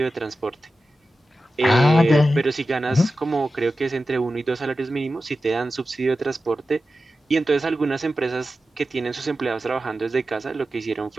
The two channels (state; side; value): normal; both; correlation 0.93